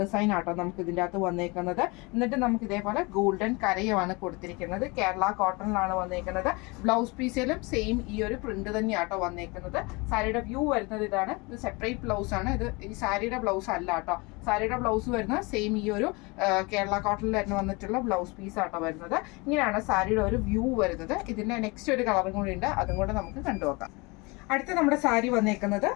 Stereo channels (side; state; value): right; quieter; 26.8 dB